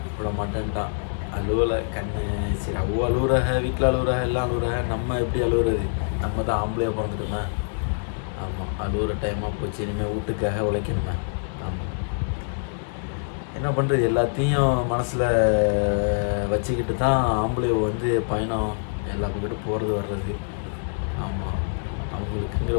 விட மாட்டேன்ட்டான், அழுவலை கண்ணு. சரி, அவ்வளோ அழுகுறாக, வீட்டில் அழுகுறாக, எல்லாம் அழுகுறாக, நம்ம எப்படி அழுகுறது, நம்ம தான் ஆம்பளையாக பிறந்துட்டோமே. ஆமாம், அழுகுற டைமாக போச்சு, இனிமேல் வீட்டுக்காக உழைக்கணுமே. ஆமாம், என்ன பண்ணுறது, எல்லாத்தையும் மனசில் வச்சுக்கிட்டு தான் ஆம்பளை வந்து பயணம் எல்லா பக்கத்தும் போகிறது வர்றது. ஆமாம், அவங்களுக்குங்கிற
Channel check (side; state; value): right; silent; digital silence